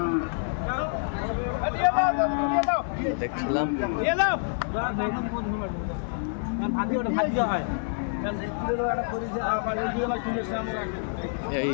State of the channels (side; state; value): right; silent; digital silence